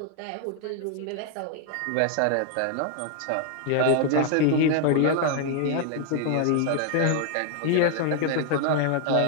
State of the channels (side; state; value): both; different; correlation 0.00